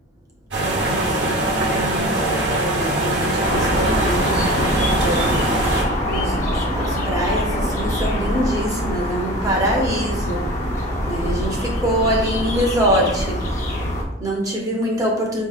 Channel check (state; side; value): normal; both; correlation 0.35